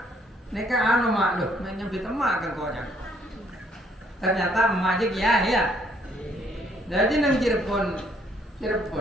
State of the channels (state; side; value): normal; both; correlation 0.67